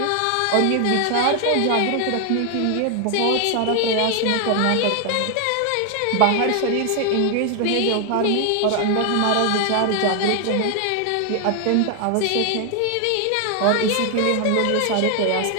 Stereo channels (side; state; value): both; different; correlation 0.00